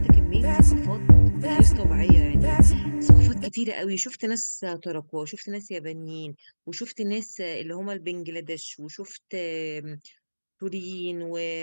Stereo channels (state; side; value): inverted; both; correlation -1.00